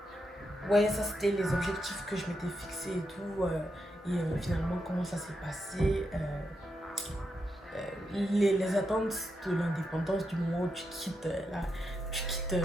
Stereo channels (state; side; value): normal; both; correlation 0.84